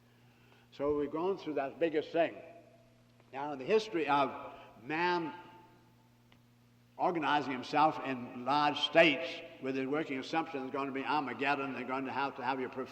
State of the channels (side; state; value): both; identical; correlation 1.00